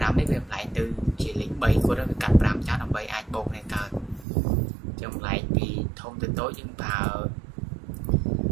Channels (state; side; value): drops out; left; at 4.2 s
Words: នេះវាបន្លែងទៅជាលេខ3គុណវាកាត់5ចាស់ដើម្បីអាចបូកនេះកើតចឹងបន្លែងពីធំទៅតូចយើងប្រើ